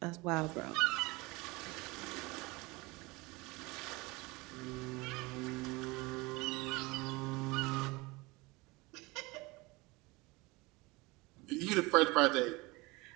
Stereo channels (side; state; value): left; quieter; 23.8 dB